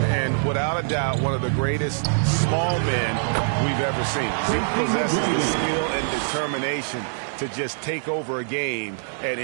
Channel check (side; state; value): left; silent; 63 dB below the other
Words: And without a doubt, one of the greatest small men we've ever seen. He possesses the skill and determination to just take over a game at